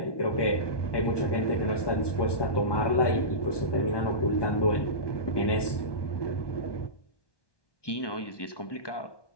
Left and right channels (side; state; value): right; late; 1.2 ms